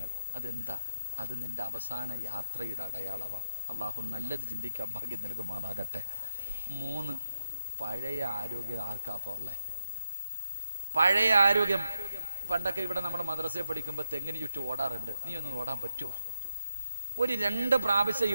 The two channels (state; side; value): inverted; both; correlation -0.83